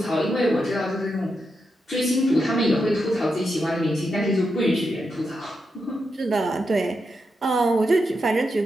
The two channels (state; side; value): normal; both; correlation 0.85